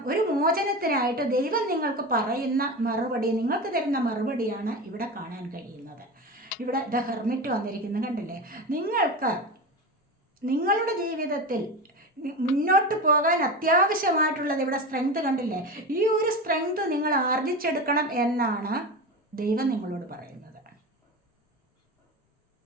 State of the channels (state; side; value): normal; both; correlation 0.25